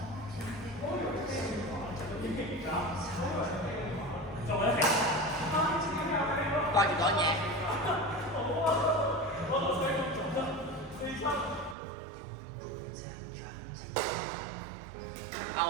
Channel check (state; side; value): drops out; left; at 11.8 s